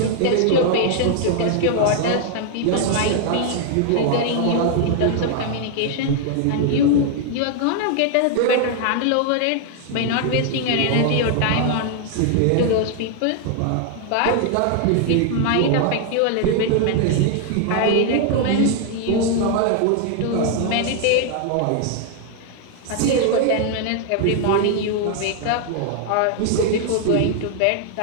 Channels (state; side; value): different; both; correlation 0.00